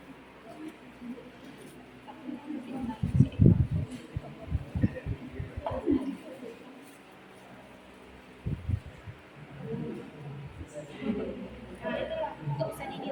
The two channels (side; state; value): both; identical; correlation 1.00